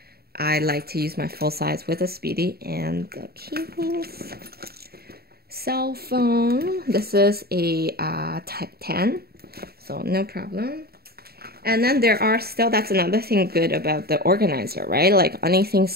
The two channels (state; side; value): late; left; 0.45 ms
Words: I like to use my full-size with a Speedy. And the keys. Cell phone. This is a Type 10, so no problem. And then there are still, that's another thing good about the organizer, right? Like, anything